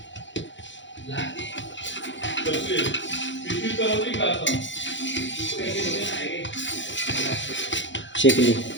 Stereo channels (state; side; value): late; right; 0.54 ms